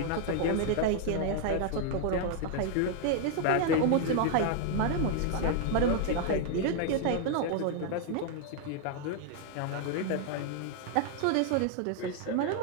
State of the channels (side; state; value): both; different; correlation 0.00